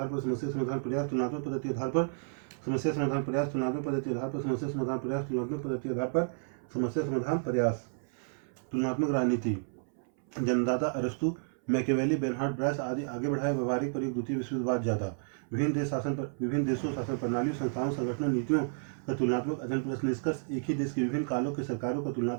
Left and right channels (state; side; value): silent; left; 57 dB below the other